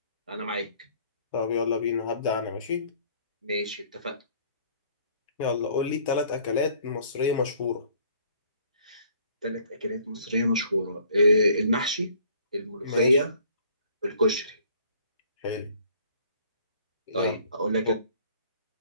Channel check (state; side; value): inverted; both; correlation -0.58